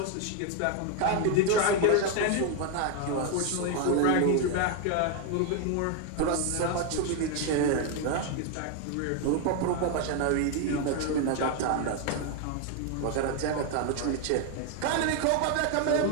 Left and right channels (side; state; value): both; different; correlation 0.01